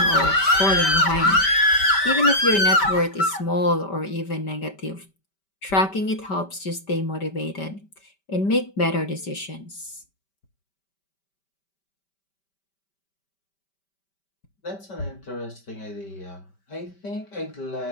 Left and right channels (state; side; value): late; right; 5.1 ms